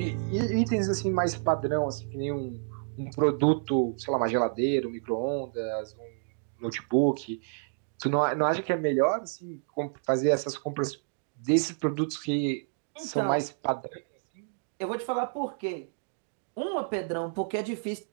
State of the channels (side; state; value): left; silent; digital silence